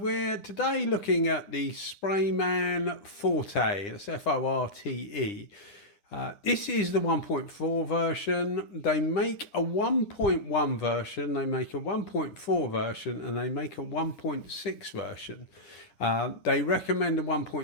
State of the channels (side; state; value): right; late; 9.9 ms